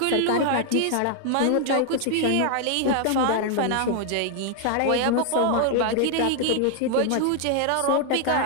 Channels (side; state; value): both; different; correlation 0.00